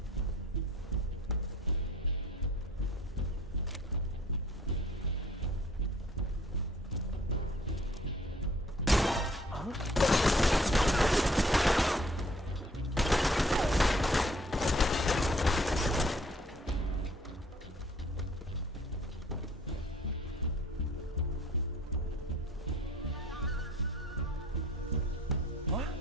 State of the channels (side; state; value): both; normal; correlation 0.57